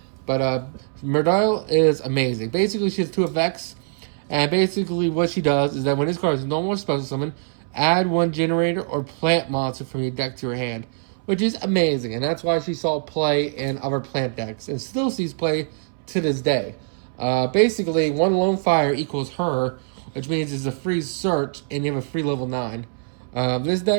But Mardell is amazing. Basically, she has 2 effects. And basically, what she does is that when this card is no more special summon, add 1 Generator or Plant monster from your deck to your hand, which is amazing. And that's why she saw play in other plant decks and still sees play to this day. Basically, 1 Lone Fire equals her, which means it's a free search and you have a free level 9. This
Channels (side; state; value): left; silent; 63 dB below the other